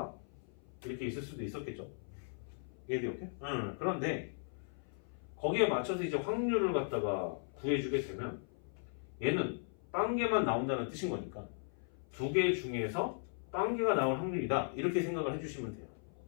이렇게 있을 수도 있었겠죠. 이해돼요? 오케이? 그런데 거기에 맞춰서 이제 확률을 갖다가 구해주게 되면 얘는 빵개만 나온다는 뜻인 거니까 2개 중에서 빵개가 나올 확률이다 이렇게 생각을 해주시면 돼요.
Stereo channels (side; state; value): right; silent; 53 dB below the other